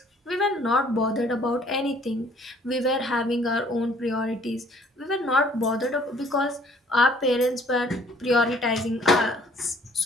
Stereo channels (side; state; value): both; normal; correlation 0.59